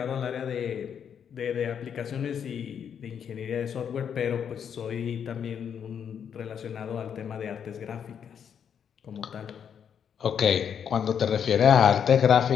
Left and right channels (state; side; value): quieter; right; 8.0 dB